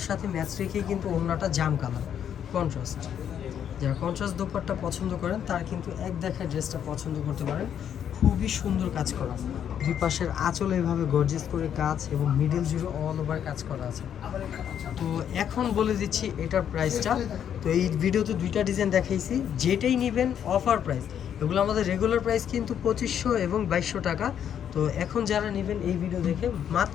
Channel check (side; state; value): right; quieter; 9.1 dB